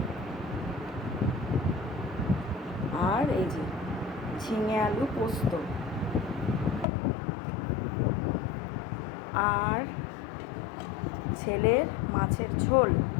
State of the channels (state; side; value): drops out; right; at 6.9 s